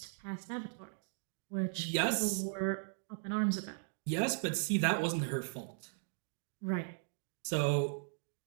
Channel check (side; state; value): left; silent; digital silence